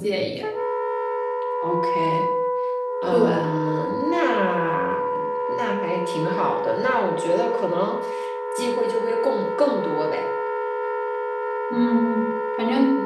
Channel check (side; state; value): both; identical; correlation 1.00